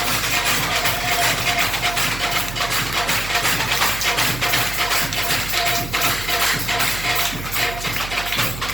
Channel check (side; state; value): right; noise; hum, 10 dB below the sound